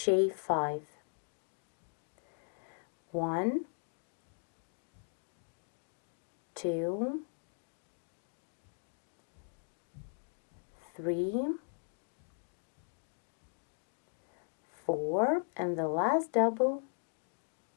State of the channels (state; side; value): silent; right; digital silence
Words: 5. 1, 2, 3, 4, and the last double